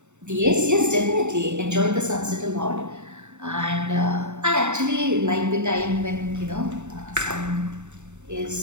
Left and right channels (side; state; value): left; late; 0.83 ms